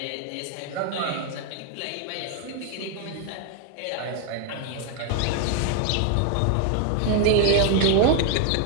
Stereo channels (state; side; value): different; both; correlation 0.00